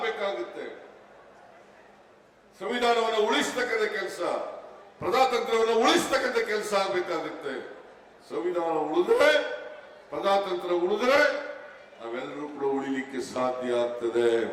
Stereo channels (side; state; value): both; identical; correlation 1.00